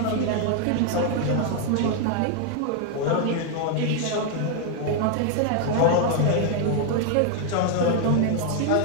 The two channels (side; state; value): both; different; correlation 0.00